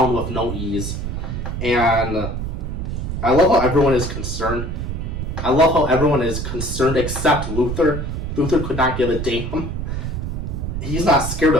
with no ease. And I love how everyone is concerned. I love how everyone is concerned except Luthor. Luthor could not give a damn. He's not scared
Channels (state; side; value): noise; right; rumble, 4 dB below the sound